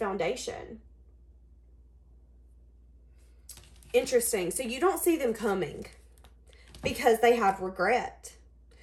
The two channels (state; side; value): identical; both; correlation 1.00